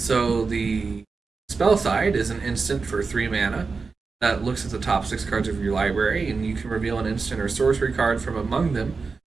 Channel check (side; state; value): left; quieter; 4.6 dB